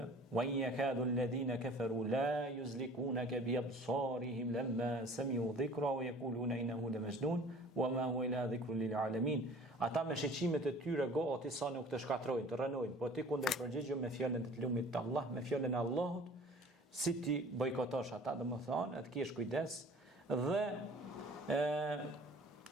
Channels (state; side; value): normal; both; correlation 0.48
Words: wa in yakadu alladhina kafaru la yuzlikunaka bi absarihim lamma sami'u dhikra wa yaquluna innahu lamajnun wa ma huwa illa dhikrun lil alamin. Ata me shiqimet e tyre gati sa nuk të shkatrojnë, të rënojnë, po ti kundër përgjigju me fjalën e të lumit të Allah, me fjalën e Allahut, si ti bojkotosh ata, dhe më thonë, të kesh kujdes, dhe